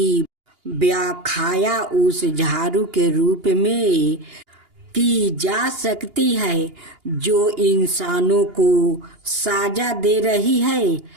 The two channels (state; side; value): late; left; 2.8 ms